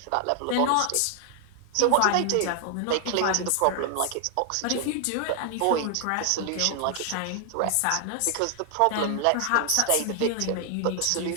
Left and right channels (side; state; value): both; different; correlation 0.00